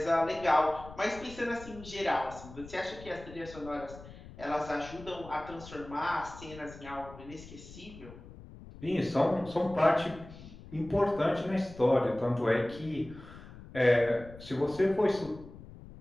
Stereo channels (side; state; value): left; noise; rumble, 17 dB below the sound